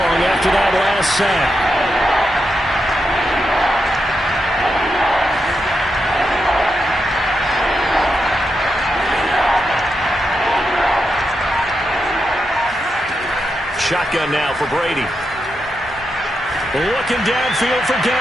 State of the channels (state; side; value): normal; both; correlation 0.85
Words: after that last sack. Shotgun now for Brady. Looking downfield for